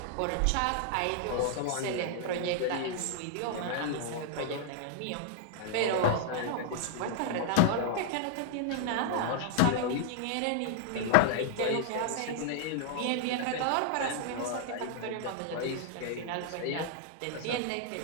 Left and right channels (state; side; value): different; both; correlation -0.01